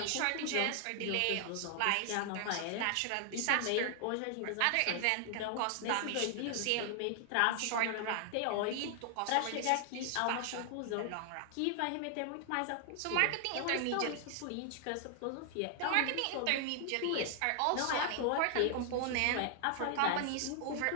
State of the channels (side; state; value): both; different; correlation 0.00